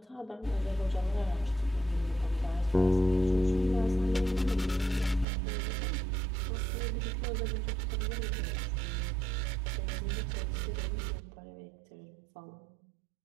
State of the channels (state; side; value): drops out; left; at 5.2 s